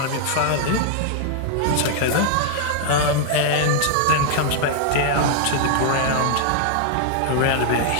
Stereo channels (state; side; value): different; both; correlation 0.00